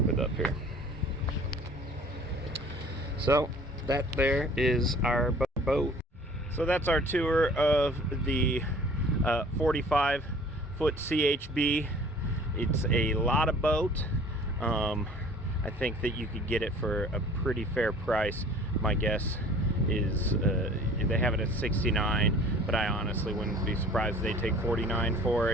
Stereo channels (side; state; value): both; normal; correlation 0.49